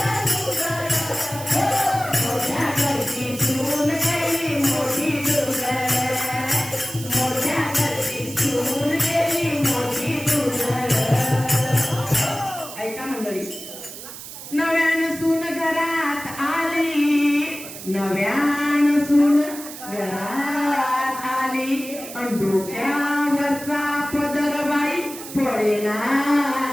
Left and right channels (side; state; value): right; noise; hiss, 12 dB below the sound